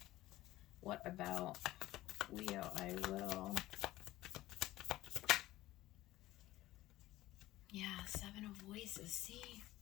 what about Leo I Will? Yeah, Seven of Voices, see?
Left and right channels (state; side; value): quieter; right; 16.3 dB